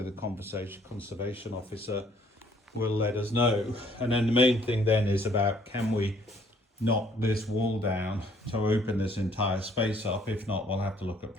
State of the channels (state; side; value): normal; both; correlation 0.62